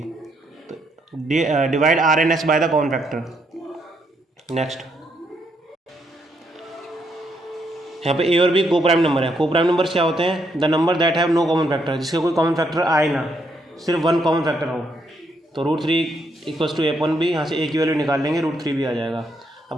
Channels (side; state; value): both; normal; correlation 0.75